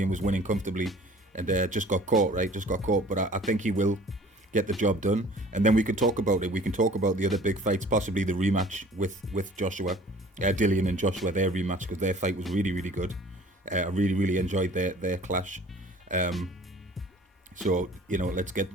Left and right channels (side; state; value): both; normal; correlation 0.49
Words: was winning comfortably and just got caught, right? But I think he will get the job done, and then we can talk about it. We can talk about the other big fights, possibly the rematch with Joshua, Dillian and Joshua, their rematch, because their fight was really, really good. I really enjoyed their clash. So